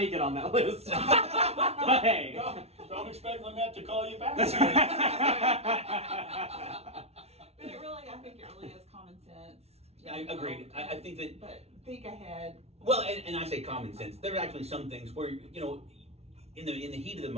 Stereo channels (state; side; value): late; left; 0.31 ms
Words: it on that list. But hey. Don't expect Lynette to call you back. But I think it really is common sense. I agreed. I think that, But think ahead. well, and I say common sense. There are actually some things where, in the heat of the